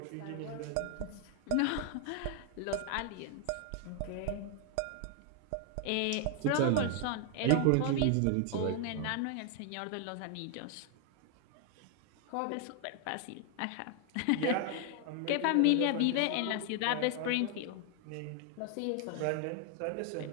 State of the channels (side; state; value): both; different; correlation 0.00